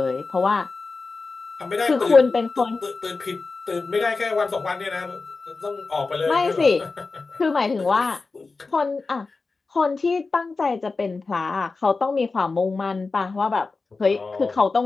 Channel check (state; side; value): quieter; right; 4.0 dB